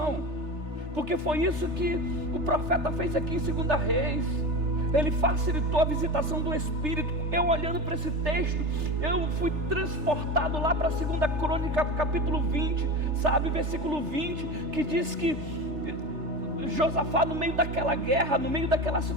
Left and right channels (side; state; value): left; late; 3.3 ms